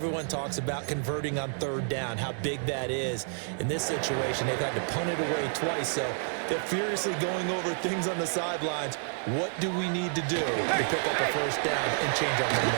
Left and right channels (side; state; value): left; silent; 58 dB below the other